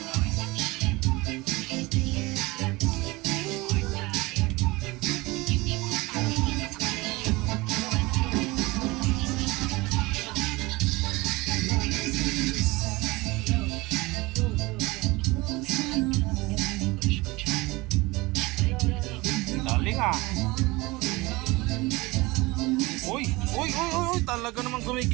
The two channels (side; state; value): left; quieter; 22.4 dB